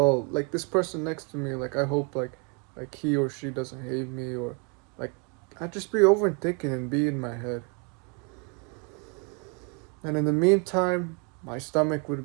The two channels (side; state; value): left; quieter; 34.9 dB